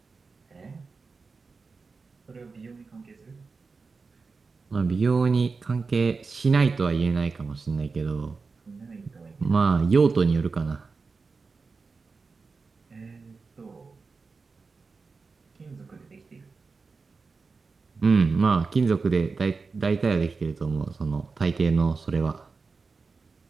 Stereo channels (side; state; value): left; quieter; 4.5 dB